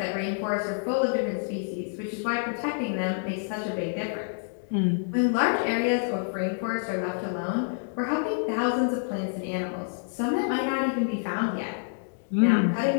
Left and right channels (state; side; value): silent; right; digital silence